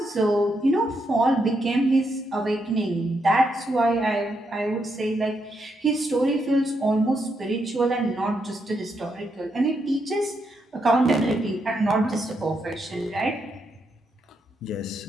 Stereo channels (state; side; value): normal; both; correlation 0.80